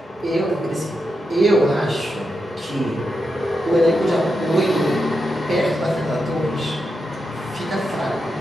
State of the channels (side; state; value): both; normal; correlation 0.87